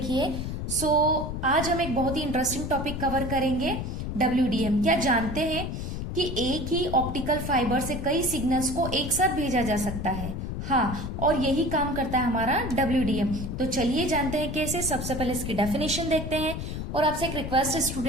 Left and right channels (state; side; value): noise; left; rumble, 5 dB below the sound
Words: सो आज हम एक बहुत ही इंटरेस्टिंग टॉपिक कवर करेंगे, WDM। क्या जानते हैं कि एक ही ऑप्टिकल फाइबर से कई सिग्नल्स को एक साथ भेजा जा सकता है? हाँ, और यही काम करता है हमारा WDM। तो चलिए जानते हैं कैसे। सबसे पहले इसकी डेफिनेशन देखते हैं। और आपसे एक रिक्वेस्ट है